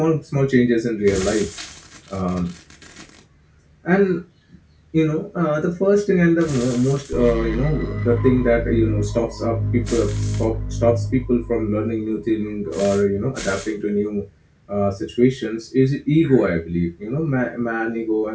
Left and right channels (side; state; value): both; identical; correlation 1.00